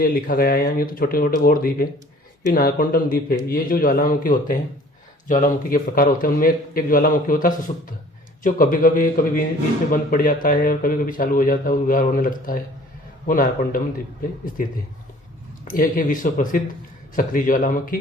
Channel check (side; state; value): both; normal; correlation 0.51